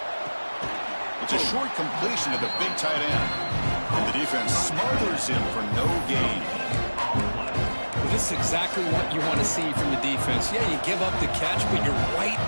It's a short completion to the big tight end. And the defense smothers him for no gain. Well, this is exactly what you want to see from the defense. Yeah, you give up the catch, but you're right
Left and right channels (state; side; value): inverted; both; correlation -1.00